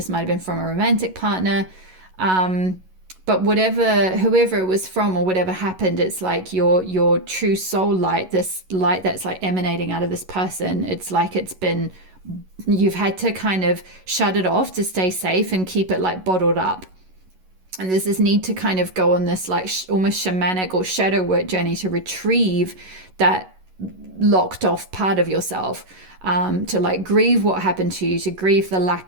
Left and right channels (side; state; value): left; late; 11 ms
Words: might have been from a romantic partner, but whoever it was from or whatever happened, it's like your true soul light, this light that's like emanating out of this person, it's like you've had to kind of shut it off to stay safe and keep it like bottled up. And there's this need to kind of go on this like almost shamanic or shadow work journey to retrieve that locked off part of yourself, to like grieve what happened to you, to grieve the